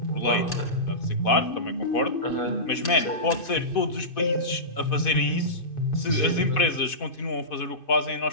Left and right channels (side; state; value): right; late; 2.5 ms